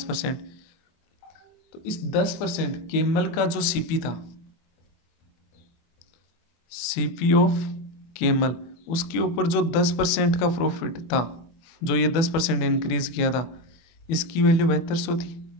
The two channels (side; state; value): right; late; 24 ms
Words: तो इस 10% केमल का जो सीपी था, सीपी ऑफ केमल, उसके ऊपर जो 10% का प्रॉफिट था, जो ये 10% इंक्रीज किया था, इसकी वैल्यू 7200 थी।